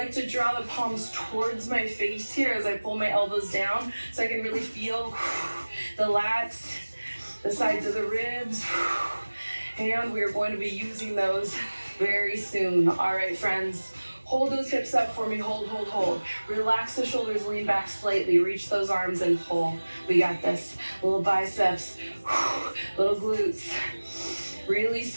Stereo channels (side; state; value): both; inverted; correlation -1.00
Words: to draw the palms towards my face here as I pull my elbows down so I can really feel the lats, the sides of the ribs, and we're going to be using those very soon. All right, friends, Hold those hips up for me, hold, hold, hold. Relax the shoulders, lean back slightly, reach those arms and pull. We got this. Little biceps, little glutes. Really